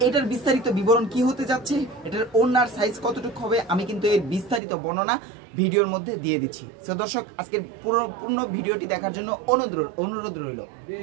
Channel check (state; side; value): drops out; left; at 4.6 s